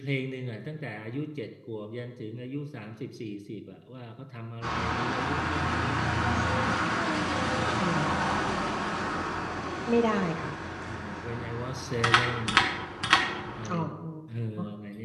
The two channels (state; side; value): identical; both; correlation 1.00